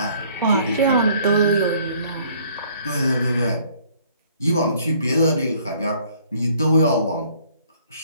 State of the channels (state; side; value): inverted; both; correlation -0.59